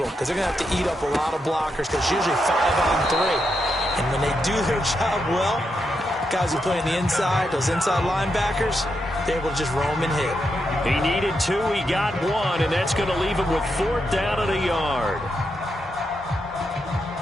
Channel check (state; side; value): normal; both; correlation 0.83